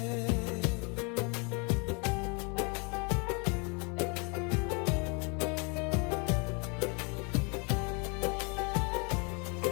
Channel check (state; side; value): quieter; right; 32.5 dB